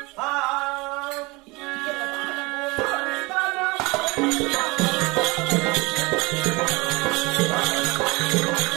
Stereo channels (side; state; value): left; quieter; 24.6 dB